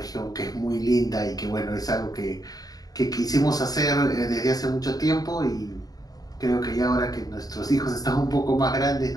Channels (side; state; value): right; late; 0.18 ms